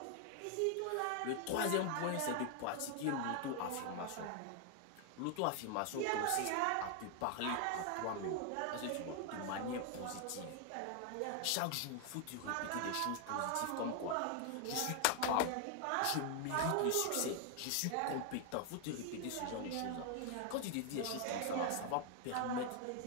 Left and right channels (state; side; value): different; both; correlation 0.00